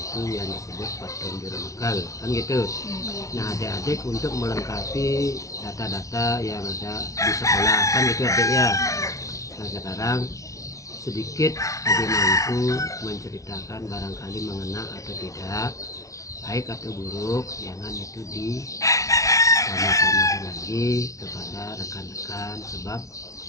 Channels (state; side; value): late; right; 0.16 ms